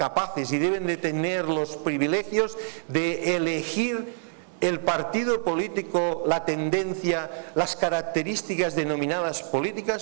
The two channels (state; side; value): silent; left; digital silence